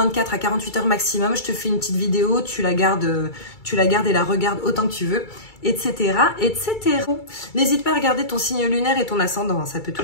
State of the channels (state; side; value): late; right; 2.3 ms